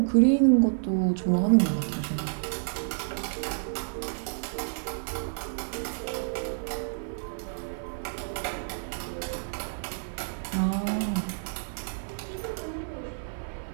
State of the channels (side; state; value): left; silent; digital silence